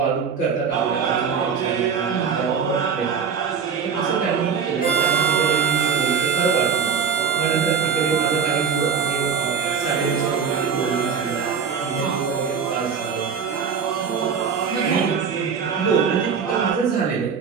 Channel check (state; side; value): quieter; left; 6.4 dB